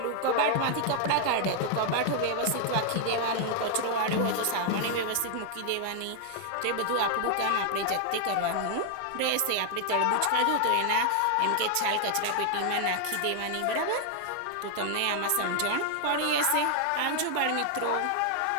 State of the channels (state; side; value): different; both; correlation 0.00